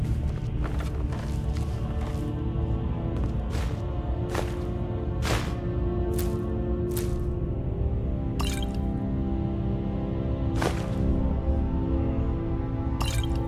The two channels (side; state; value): both; identical; correlation 1.00